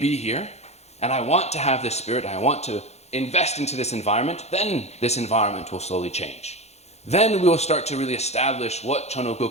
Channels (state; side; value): late; right; 0.31 ms